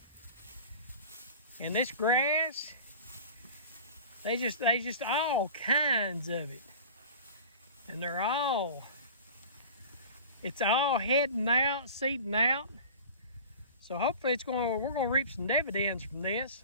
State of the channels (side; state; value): both; inverted; correlation -0.38